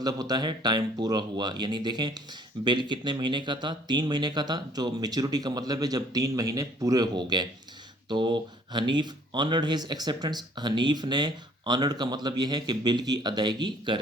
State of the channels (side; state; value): both; normal; correlation 0.58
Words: होता है टाइम पूरा हुआ, यानी देखें बिल कितने महीने का था? 3 महीने का था। जो मेच्योरिटी का मतलब है जब 3 महीने पूरे हो गए। तो Hanif honoured his acceptance, Hanif ने ऑनर्ड का मतलब ये है कि बिल की अदायगी